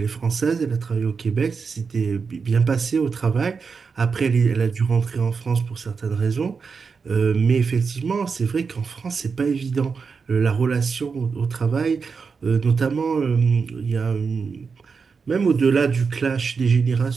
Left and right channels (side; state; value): left; quieter; 5.3 dB